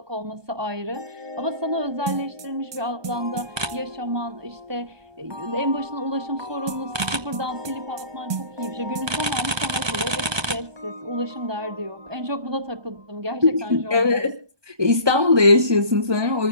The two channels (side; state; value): left; late; 1.2 ms